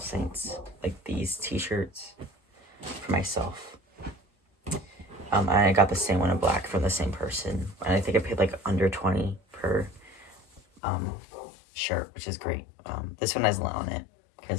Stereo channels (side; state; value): right; drops out; at 10.8 s